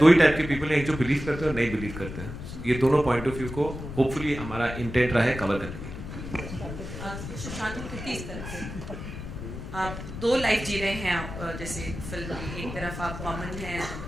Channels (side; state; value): left; noise; rumble, 9 dB below the sound